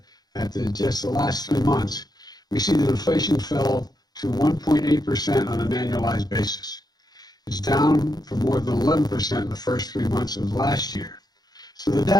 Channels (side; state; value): right; late; 0.19 ms